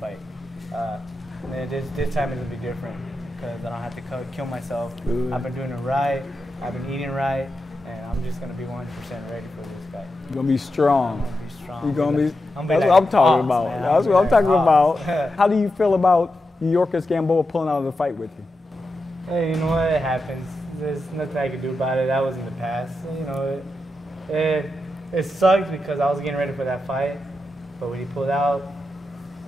This time it'll be different because I don't have to kill myself. Good. I've been doing it right, I've been eating right, and I'm just going to be 100% ready for this guy. You're going to be strong. I'm going to be strong. You're going to be, that's what I'm talking about. Man. That's what I'm talking about. How do you feel about Yorkers Gamboa pulling out of the fight with you? Hey, you know what? It happens. There's nothing I can do about it. That was in the past. It sucked because I was getting ready for that fight, but when he pulled out,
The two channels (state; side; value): normal; both; correlation 0.88